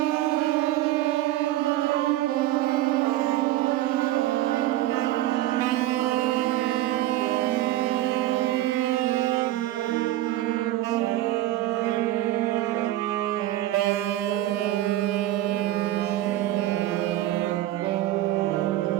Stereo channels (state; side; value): quieter; left; 14.8 dB